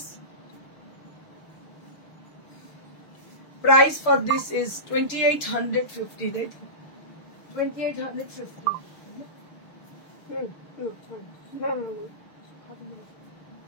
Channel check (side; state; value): right; late; 6.6 ms